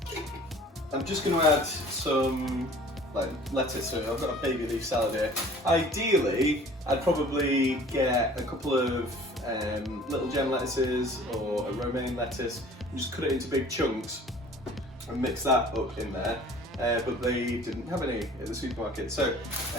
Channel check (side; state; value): both; normal; correlation 0.49